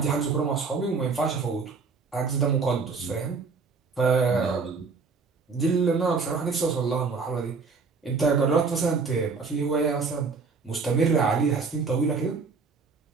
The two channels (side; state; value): left; quieter; 4.7 dB